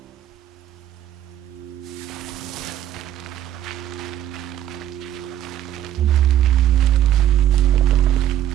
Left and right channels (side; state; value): left; quieter; 11.5 dB